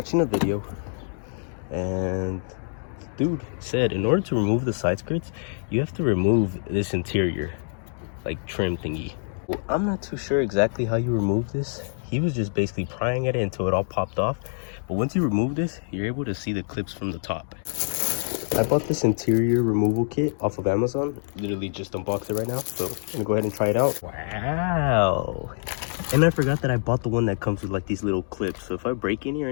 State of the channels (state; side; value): silent; right; 61 dB below the other